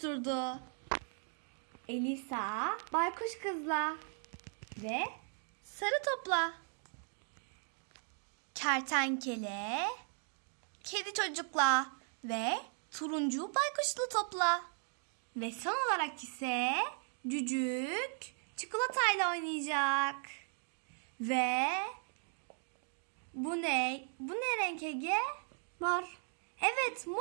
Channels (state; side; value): silent; left; 53 dB below the other